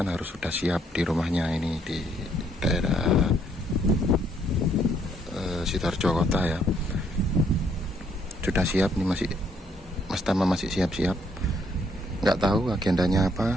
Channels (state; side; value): normal; both; correlation 0.69